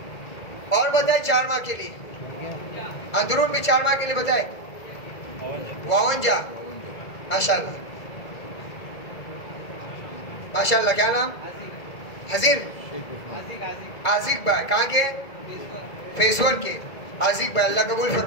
اور بتائے 4 ماہ کے لیے اندرون بھی 4 ماہ کے لیے بتائے 52، ماشاءاللہ ماشاءاللہ۔ کیا نام؟ حضیر عازق بھائی، کہاں کے؟ فیس 1 کے عازق بھائی، اللہ قبول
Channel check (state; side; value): late; right; 2.0 ms